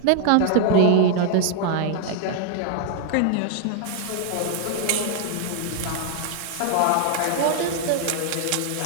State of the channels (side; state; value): both; different; correlation 0.00